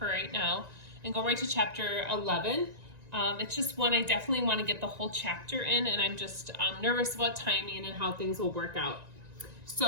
right now and go right to chapter 11. It's just one I definitely want to get the whole chapter in, and I'm just nervous about timing and how things will work out.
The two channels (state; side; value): late; left; 1.9 ms